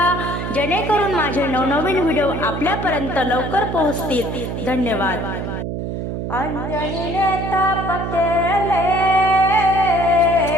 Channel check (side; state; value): right; noise; hum, 4 dB below the sound